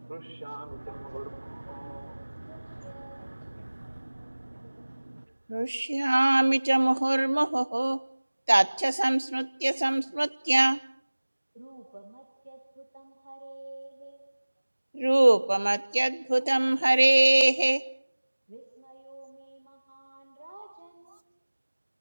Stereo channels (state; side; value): inverted; both; correlation -1.00